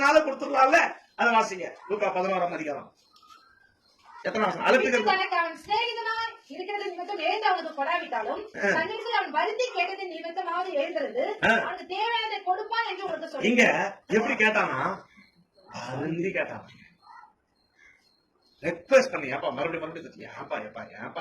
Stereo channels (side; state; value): both; identical; correlation 1.00